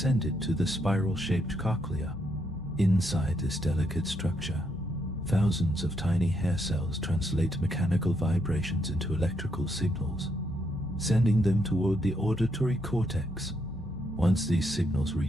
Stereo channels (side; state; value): both; normal; correlation 0.77